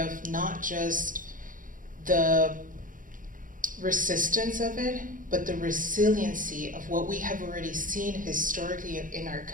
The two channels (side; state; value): left; late; 0.39 ms